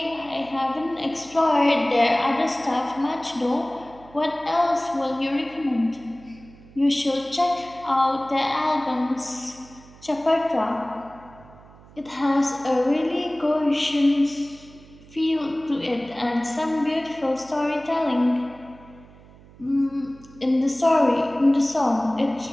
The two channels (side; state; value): right; noise; hum, 23 dB below the sound